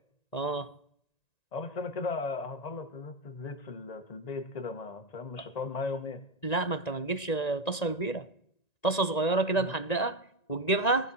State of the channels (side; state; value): right; late; 1.9 ms